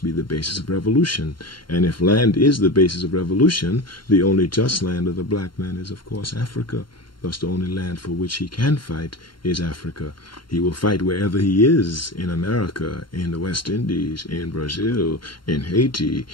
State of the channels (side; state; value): right; late; 0.72 ms